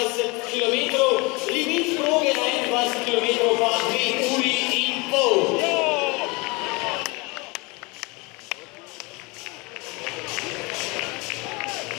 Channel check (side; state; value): right; quieter; 26.7 dB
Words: km. Limit proge na 21 km pa 2 uri in pol.